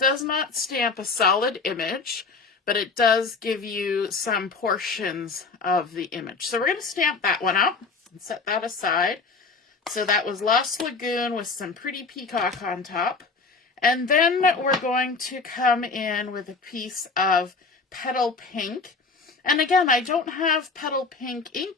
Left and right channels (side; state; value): right; quieter; 4.4 dB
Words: not stamp a solid image, but it does give you some portions of the image. So we're going to stamp that one out and set that aside. So that was Lost Lagoon with some Pretty Peacock on top. And then we're going to come in with a piece of Petal Pink. And again, I don't have Petal Pink